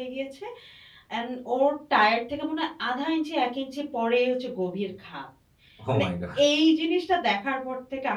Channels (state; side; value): identical; both; correlation 1.00